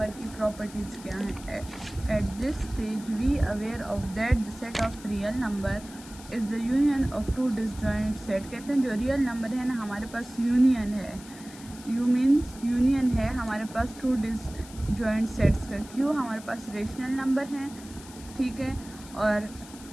की प्रॉपर्टीज़ क्या हैं। At this stage we aware of that the set of real number is the union of two disjoint set. कहते हैं जो रियल नंबर है ना, हमारे पास यूनियन है। यू मीन्स यूनियन है हमारे पास टू डिसजॉइंट सेट्स का। क्यों? हमारे पास रेशनल नंबर हैं, ठीक है, और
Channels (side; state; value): left; noise; hiss, 18 dB below the sound